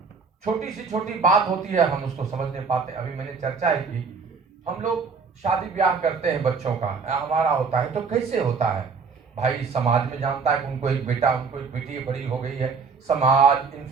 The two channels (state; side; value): quieter; left; 5.2 dB